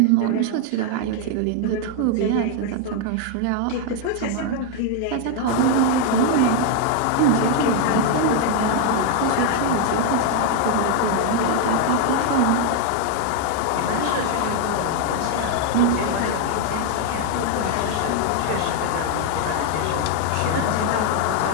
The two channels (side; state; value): both; different; correlation 0.00